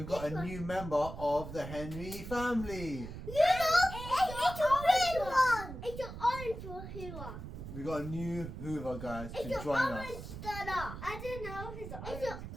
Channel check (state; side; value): noise; right; rumble, 9 dB below the sound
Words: got a new member of the Henry family. It's a red one. It's an orange one Hoover. We got a new Hoover guys to It's an join orange us. stunner. I don't know if it's orange. It's an